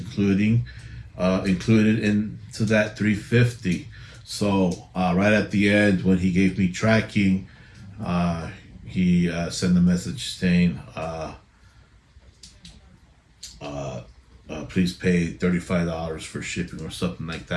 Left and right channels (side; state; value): both; identical; correlation 1.00